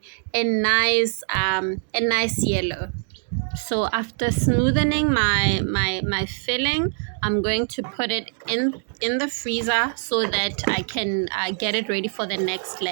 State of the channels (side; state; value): left; silent; 62 dB below the other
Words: a nice yellow. So after smoothing my filling, I'm going to put it in the freezer so that I can get it ready for the next